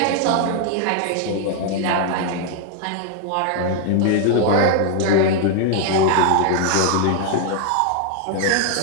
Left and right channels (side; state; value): both; different; correlation 0.00